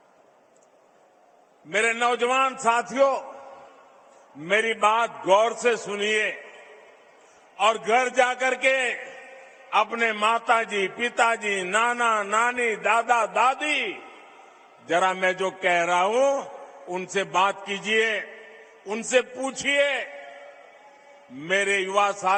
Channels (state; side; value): identical; both; correlation 1.00